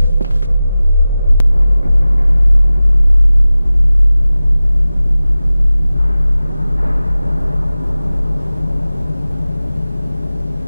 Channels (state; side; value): inverted; both; correlation -0.96